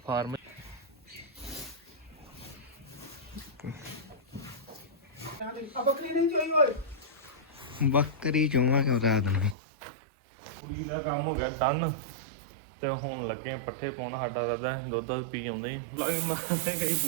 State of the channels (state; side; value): drops out; left; at 9.6 s